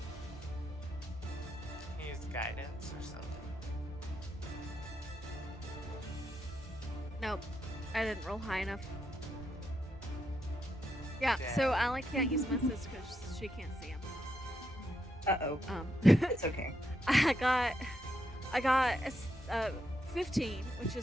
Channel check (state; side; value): normal; both; correlation 0.81